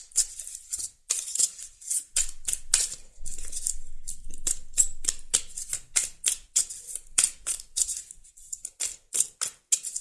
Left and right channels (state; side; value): identical; both; correlation 1.00